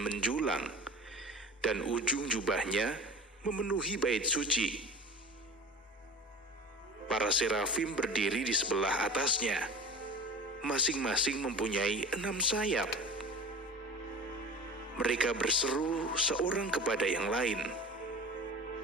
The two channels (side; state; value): both; normal; correlation 0.36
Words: menjulang, dan ujung jubahnya memenuhi bait suci. Para serafim berdiri di sebelah atasnya, masing-masing mempunyai 6 sayap. Mereka berseru seorang kepada yang lain,